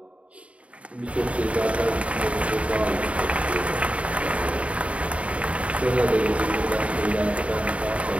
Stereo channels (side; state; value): left; late; 0.064 ms